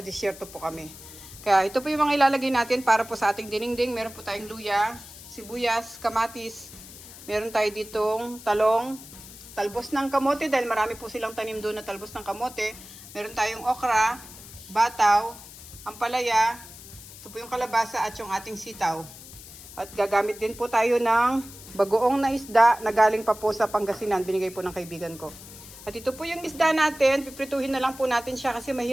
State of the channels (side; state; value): left; noise; hiss, 16 dB below the sound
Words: disyerto po kami. Kaya ito po yung mga ilalagay natin para po sa ating dinengdeng. Meron po tayong luya, sibuyas, kamatis. Meron tayo ditong talong. Talbos ng kamote dahil marami po silang tanim doon na talbos ng kamote. Meron tayong okra, bataw, ampalaya, ito po yung kalabasa at yung ating sitaw. At gagamit din po tayo ng bagoong na isda na galing pa po sa Pangasinan. Binigay po ng kaibigan ko. At ito po yung isda natin. Piprituhin na lang po natin siya kasi